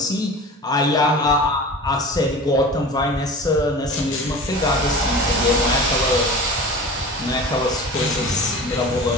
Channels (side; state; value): both; normal; correlation 0.36